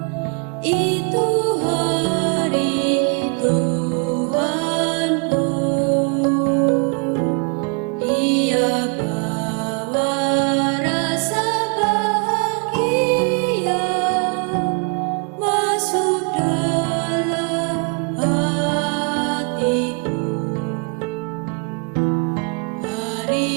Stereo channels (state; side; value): quieter; left; 35.3 dB